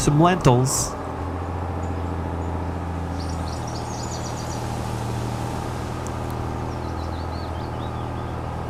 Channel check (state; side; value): identical; both; correlation 1.00